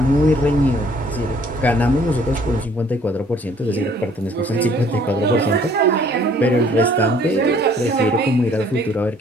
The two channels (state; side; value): normal; both; correlation 0.59